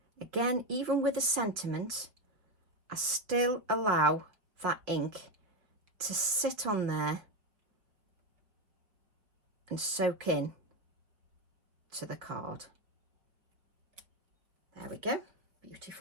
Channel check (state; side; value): late; left; 4.8 ms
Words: Again, even with a sentiment, I still allow that ink to sit on there and soak in to the card. There we go,